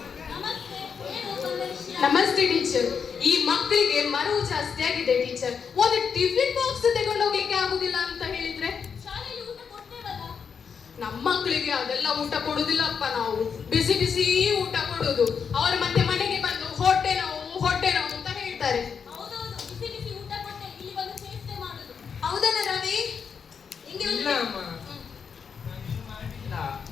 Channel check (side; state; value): right; quieter; 6.5 dB